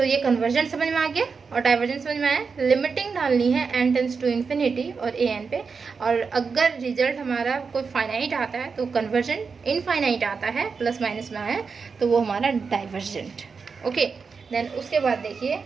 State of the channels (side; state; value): left; quieter; 5.2 dB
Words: ये कन्वर्जन समझ में आ गया और डाइवर्जन समझ में आया। लिमिटिंग डालनी है n टेंस टू इन्फिनिटी और an पे, और अगर रिजल्ट हमारा कोई फाइनाइट आता है तो कन्वर्जन इनफाइनाइट आता है, प्लस माइनस में आया तो वो हमारा डाइवर्जेंट। ओके, देन उसके बाद देखिए